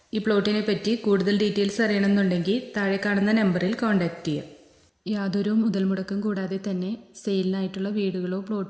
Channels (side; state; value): both; identical; correlation 1.00